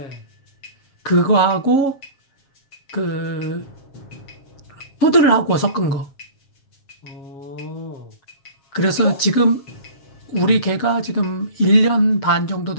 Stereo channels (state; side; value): late; right; 7.3 ms